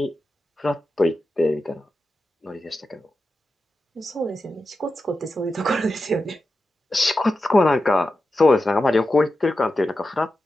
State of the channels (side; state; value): both; normal; correlation 0.91